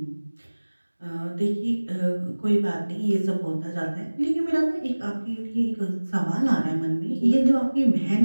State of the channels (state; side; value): inverted; both; correlation -1.00